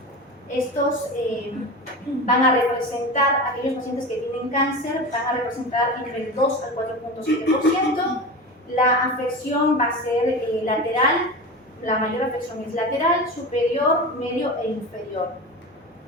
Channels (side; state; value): both; normal; correlation 0.28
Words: Estos van a representar, aquellos pacientes que tienen cáncer, van a representar entre el 2 al 4.7%. La afección va a ser lateral. La mayor afección es lateral, superior, medio e inferior.